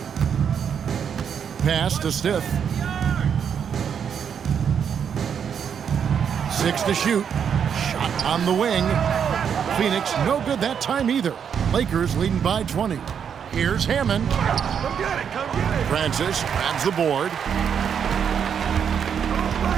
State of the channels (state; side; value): quieter; left; 7.7 dB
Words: Pass to Stiff. 6 to shoot. Shot on the wing. Phoenix, no good that time either. Lakers leading by 20. Here's Hammond. Come get it, come get it. Francis grabs the board.